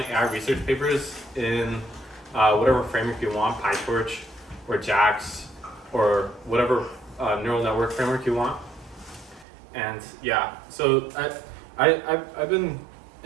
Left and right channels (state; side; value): drops out; left; at 9.5 s